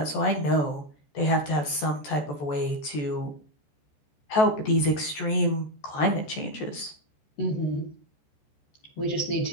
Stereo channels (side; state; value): right; late; 14 ms